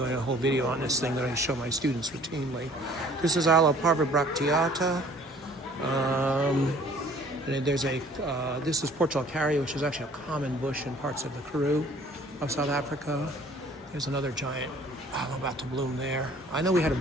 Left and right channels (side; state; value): both; normal; correlation 0.54